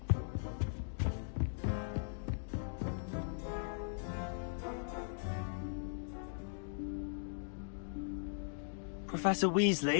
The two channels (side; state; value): right; silent; digital silence